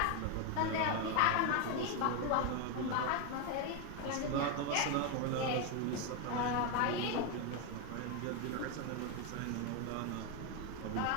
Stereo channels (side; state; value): both; different; correlation 0.02